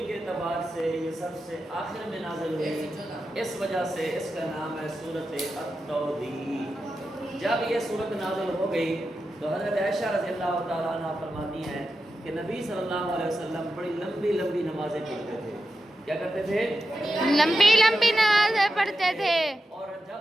کے اعتبار سے یہ سب سے آخر میں نازل ہوئی، اس وجہ سے اس کا نام ہے سورۃ التوضیح. جب یہ سورت نازل ہو گئی تو حضرت عائشہ رضی اللہ تعالیٰ عنہ فرماتی ہیں کہ نبی صلی اللہ علیہ وسلم بڑی لمبی لمبی نمازیں پڑھتے تھے. کیا کرتے تھے؟ لمبی لمبی نمازیں پڑھتے تھے. اور جب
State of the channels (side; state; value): both; normal; correlation 0.90